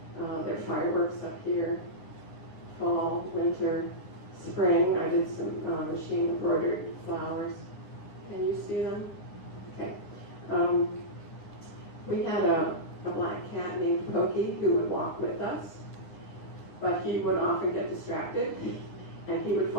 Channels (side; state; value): right; late; 9.8 ms